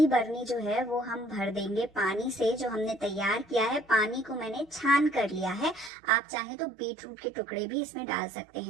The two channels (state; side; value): drops out; left; at 5.9 s